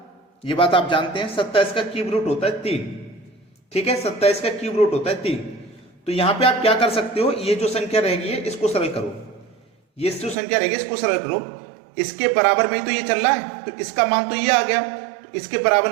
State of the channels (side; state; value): left; drops out; at 10.4 s